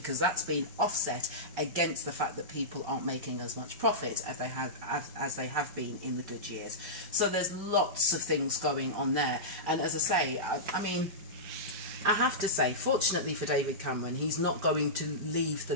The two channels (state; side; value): late; left; 5.1 ms